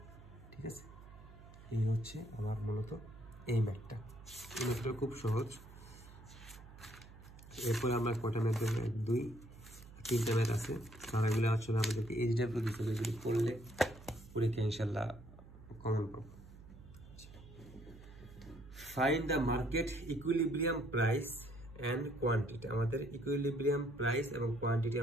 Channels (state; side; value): noise; right; hum, 18 dB below the sound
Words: ঠিক আছে। এই হচ্ছে আমার মূলত এই ম্যাথটা, এই ম্যাথটা খুব সহজ। এরপরে আমরা কটা ম্যাথ দেবো, 1 2 3টা ম্যাথ আছে, তারাগুলো আসলে আমাদেরকে এইচডাব্লিউ দিতে হবে, যদি করলে পরীক্ষা ইনশাল্লাহ কমন পাবো। Find the market equilibrium price and quantity, আমাদের ইকুইলিব্রিয়াম প্রাইস এবং কোয়ান্টিটি